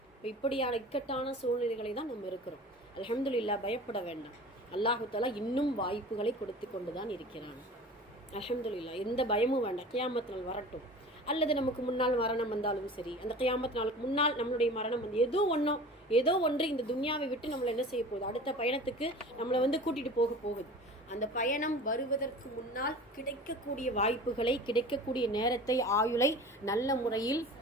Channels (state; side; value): normal; both; correlation 0.40